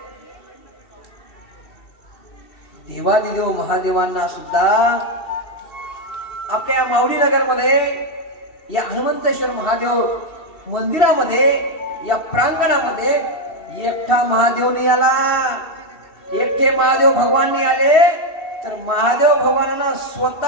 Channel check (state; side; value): late; right; 2.7 ms